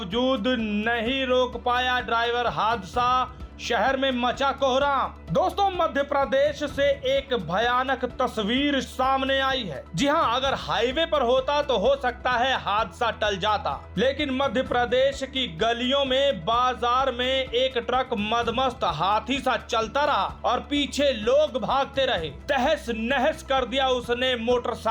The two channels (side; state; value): both; identical; correlation 1.00